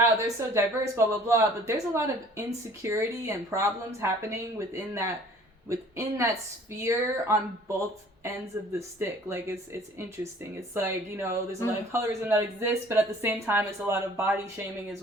they're so diverse, blah blah blah, but there's a lot of insecurity and problems happening within that sphere on both ends of the stick. Like it's interesting. It's like, you know, there's a lot of colorism that exists, but at the same time it's a lot of body shaming as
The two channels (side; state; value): both; normal; correlation 0.52